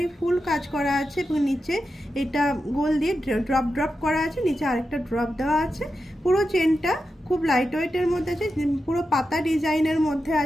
ফুল কাজ করা আছে এবং নিচে এটা গোল দিয়ে ড্রপ করা আছে, নিচে আরেকটা ড্রপ দেওয়া আছে। পুরো চেনটা খুব লাইট ওয়েটের মধ্যে আছে, পুরো পাতা ডিজাইনের মধ্যে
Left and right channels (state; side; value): normal; both; correlation 0.89